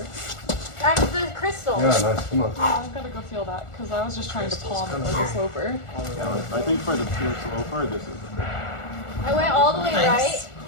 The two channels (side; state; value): right; late; 1.4 ms